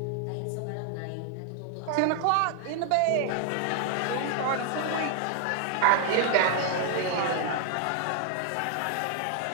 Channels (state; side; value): different; both; correlation 0.00